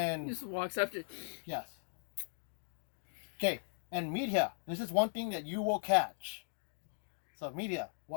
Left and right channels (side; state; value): right; silent; digital silence